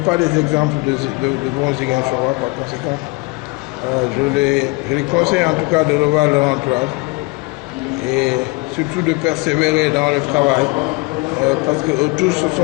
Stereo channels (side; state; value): right; quieter; 26.3 dB